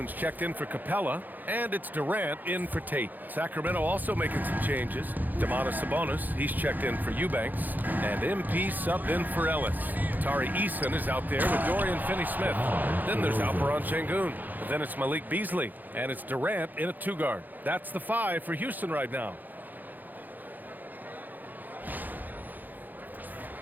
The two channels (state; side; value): late; left; 0.085 ms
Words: checked in for Capella, and it's Durant in for Tate. Sacramento also making some changes. Domantas Sabonis, he's checked in for Eubanks, and MP subbed in for Ellis. Tari Eason is out there with Dorian Finney-Smith. Then there's Alperen Şengün. Then it's Malik Beasley, and it's Durant in a 2-guard. That's the 5 for Houston right now.